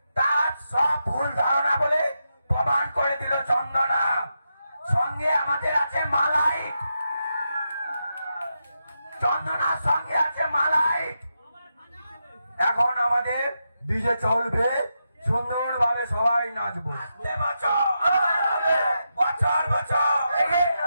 তার সব ভুল ধারণা বলে প্রমাণ করে দিল চন্দনা। সঙ্গে আমাদের আছে মালাইট, চন্দনার সঙ্গে আছে মালাইট। এখন আমাদের ডিজে চলবে, সুন্দরভাবে সবাই নাচবো। বছর বছর এগিয়ে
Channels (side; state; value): both; inverted; correlation -0.86